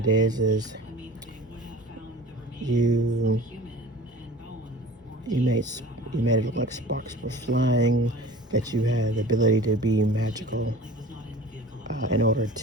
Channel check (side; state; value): both; normal; correlation 0.41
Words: is you made it look like sparks were flying, that you had the ability to be magical in order